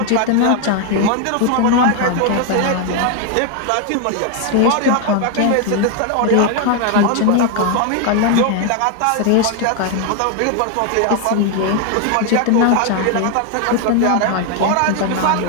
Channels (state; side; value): different; both; correlation 0.01